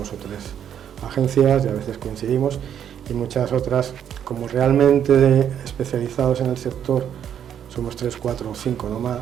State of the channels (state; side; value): quieter; left; 9.2 dB